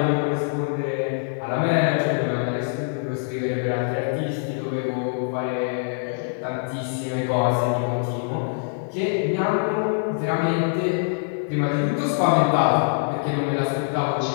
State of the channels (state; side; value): silent; right; digital silence